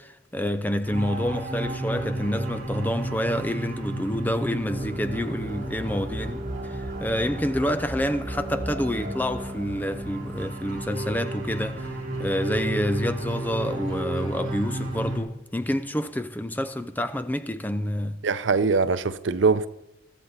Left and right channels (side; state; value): both; normal; correlation 0.65